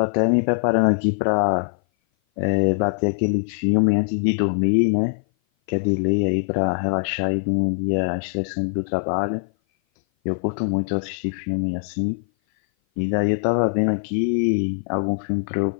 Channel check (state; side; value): silent; right; 57 dB below the other